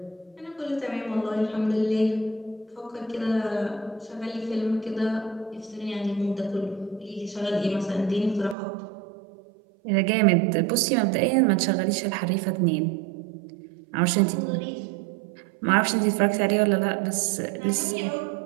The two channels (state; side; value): drops out; left; at 8.6 s